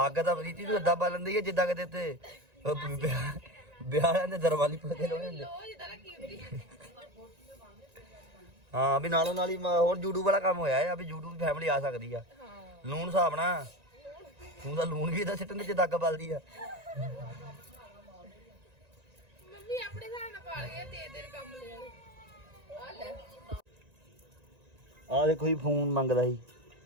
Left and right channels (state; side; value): late; left; 1.9 ms